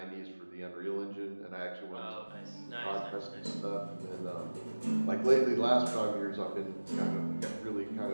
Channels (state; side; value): inverted; both; correlation -1.00